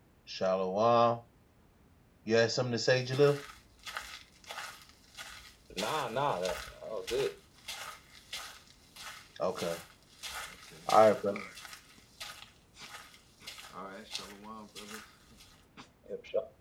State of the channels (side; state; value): both; identical; correlation 1.00